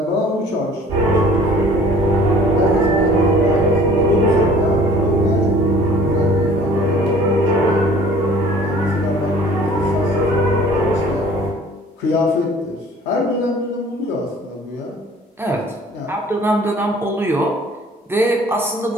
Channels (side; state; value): both; normal; correlation 0.51